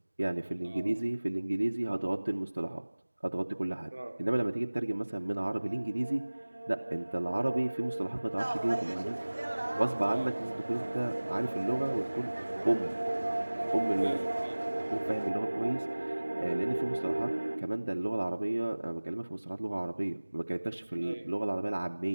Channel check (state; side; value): inverted; both; correlation -1.00